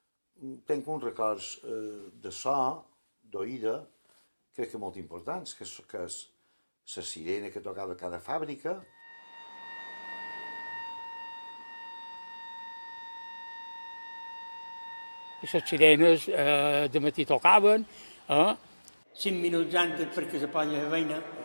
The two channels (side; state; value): both; inverted; correlation -1.00